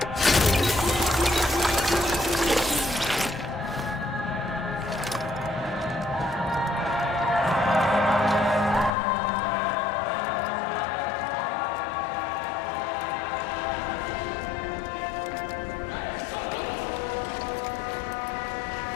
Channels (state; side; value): drops out; right; at 8.9 s